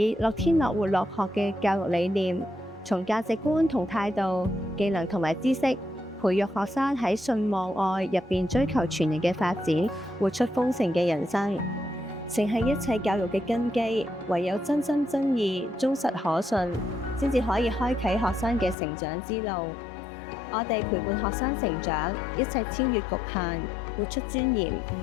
樂天樂活樂學嘅教育理念，從價值觀同態度、技能同埋知識，培育學生喺信望愛入邊追求全人嘅發展，活出豐盛嘅人生，誠係一切教育嘅根基。唯有真心真意、忠實可信，先至可以開啟學生嘅成長之路。我哋陪伴學生成長，一齊超越局限，活出尊嚴，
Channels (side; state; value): right; drops out; at 18.8 s